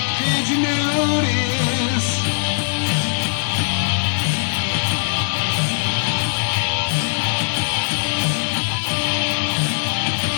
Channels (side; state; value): right; silent; digital silence